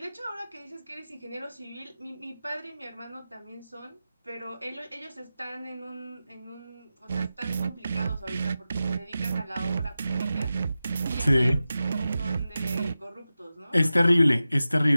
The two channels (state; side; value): inverted; both; correlation -0.94